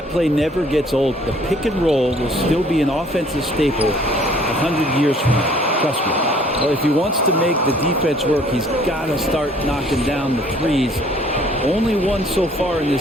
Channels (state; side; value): normal; both; correlation 0.57